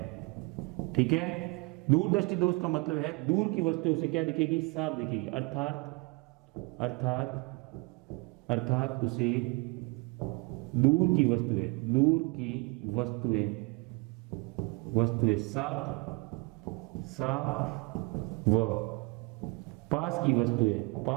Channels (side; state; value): left; quieter; 28.3 dB